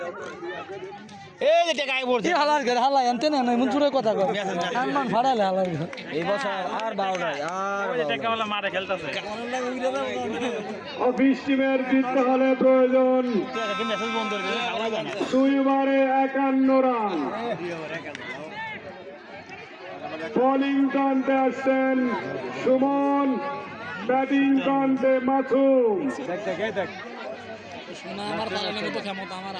এই যে টাকা আই পড়ছে হালার ঘর হালা আনতে না মন চুরে কথা কর সম্মান ফাড়ালে হালার ঘর এই বছর আর বাউ নাই আর ওই যে টাকাওয়ালা মারে খেলতাছে অফিস টিমের জিততে হলে প্রয়োজন তুই মেসেজ বন্ধ করে দিলে খাওয়া যায় না 2 ওভারে 51 রান বোলিং কান্তে আসছেন সুমন ব্যাটিং কান্তে মাসুম সোনা আমার পালানোর মতো ক্ষমতা আমার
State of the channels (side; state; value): both; identical; correlation 1.00